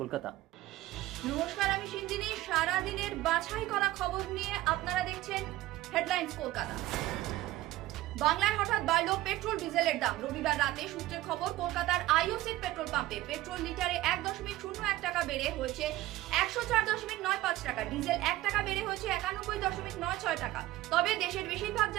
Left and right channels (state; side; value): quieter; left; 16.3 dB